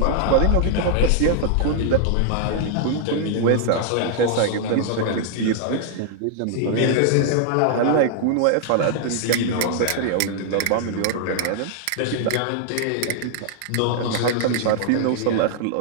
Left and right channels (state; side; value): different; both; correlation -0.01